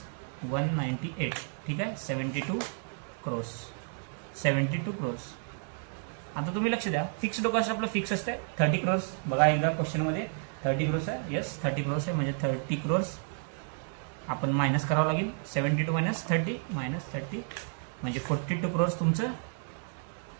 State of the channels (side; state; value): left; silent; 57 dB below the other